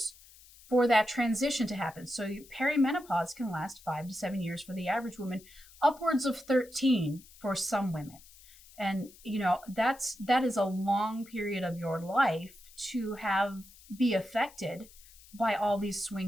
for that transition to happen. So perimenopause can last 5 to 7 years for the average woman, upwards of 13 for some women. And, that is a long period of your life to be affected by all these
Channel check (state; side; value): noise; left; hiss, 23 dB below the sound